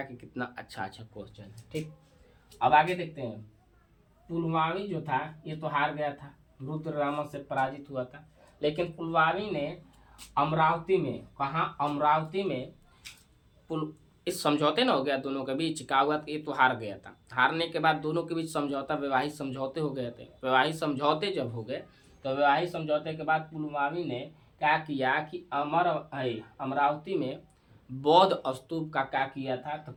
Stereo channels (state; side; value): identical; both; correlation 1.00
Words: कि कितना अच्छा क्वेश्चन है। ठीक, अब आगे देखते हैं। पुलमावी जो था ये तो हार गया था, रुद्रदामन से पराजित हुआ था, लेकिन पुलमावी ने अमरावती में, कहा अमरावती में, इस समझौते ना हो गया दोनों के बीच, क्या हुआ, ये तो हार गया था। हारने के बाद दोनों के बीच समझौता, वैवाहिक समझौते हो गए थे। वैवाहिक समझौते जब हो गए, तो वैवाहिक समझौते के बाद पुलमावी ने क्या किया कि अमरावती में बौद्ध स्तूप का क्या किया था, तो